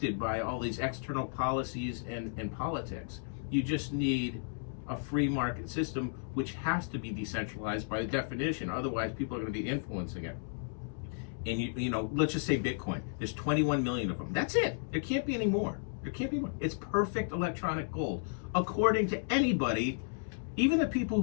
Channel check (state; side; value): silent; right; digital silence